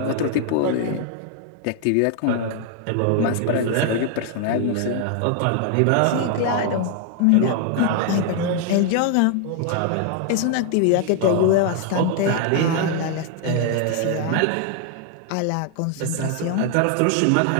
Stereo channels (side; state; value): both; different; correlation 0.00